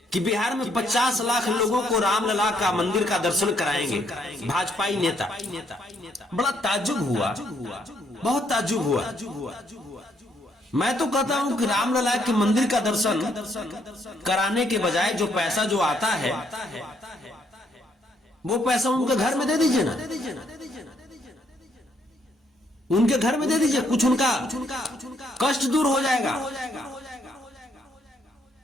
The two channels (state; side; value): normal; both; correlation 0.71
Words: कि बिहार में 50 लाख लोगों को रामलला का मंदिर का दर्शन कराएंगे भाजपाई नेता। बड़ा ताज्जुब हुआ, बहुत ताज्जुब हुआ। मैं तो कहता हूं कि रामलला के मंदिर का दर्शन कराने के बजाय जो पैसा जो आता है वो पैसा उनके घर में दे दीजिए ना, उनके घर में दे दीजिए, कुछ उनका कष्ट दूर हो जाएगा।